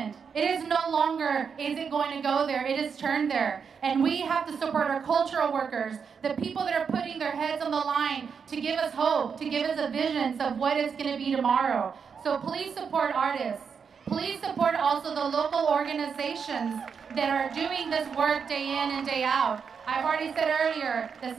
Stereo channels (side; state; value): left; quieter; 6.3 dB